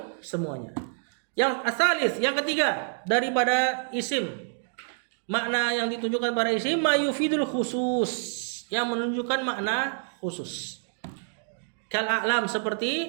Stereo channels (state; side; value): silent; left; digital silence